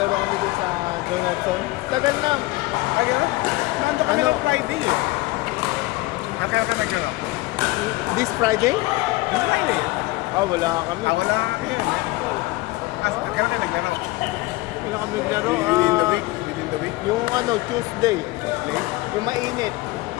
naglaro kami doon sa Donaldson. Tagal na. Ay, gano'n? Nando kami ng Friday eh. Kaya ka naglaro? This Friday? This Friday? Wala kami. Wala kami yun eh. Kaya ka naglaro? Wala kami naglaro. Within the week? Within the week? Yung Tuesday. Tuesday? Yung mainit.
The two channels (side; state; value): right; quieter; 20.7 dB